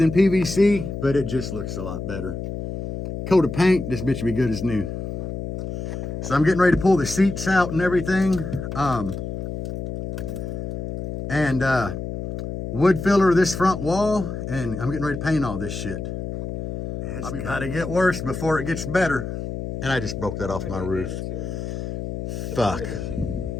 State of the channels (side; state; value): left; noise; hum, 6 dB below the sound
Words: PVC, but it just looks a lot better. Coat of paint, this bitch will be good as new. So I'm getting ready to pull the seats out and everything. Wood filler this front wall, and I'm getting ready to paint all this shit. It's got to get worse before it gets better. And I just broke that off my roof. Fuck.